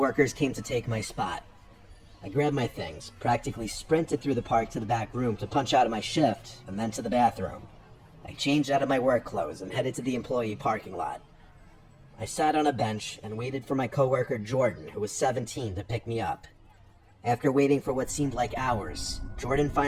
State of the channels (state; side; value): identical; both; correlation 1.00